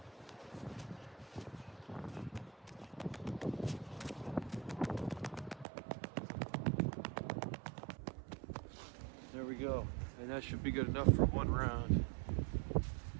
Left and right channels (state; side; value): drops out; left; at 5.7 s